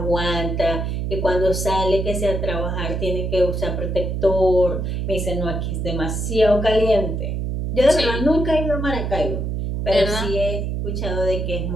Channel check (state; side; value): noise; right; hum, 2 dB below the sound